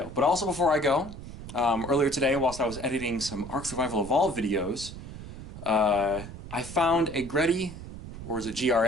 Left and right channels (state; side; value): noise; right; rumble, 12 dB below the sound